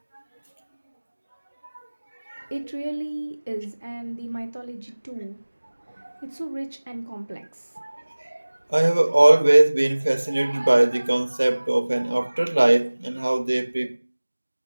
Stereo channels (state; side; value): inverted; both; correlation -1.00